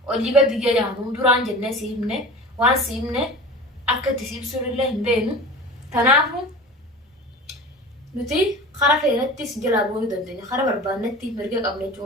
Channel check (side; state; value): both; normal; correlation 0.36